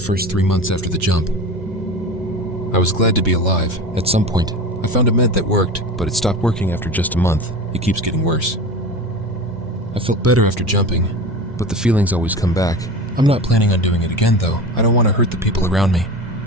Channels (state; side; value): normal; both; correlation 0.31